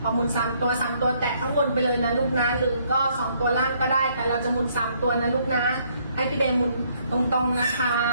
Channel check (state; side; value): inverted; both; correlation -0.68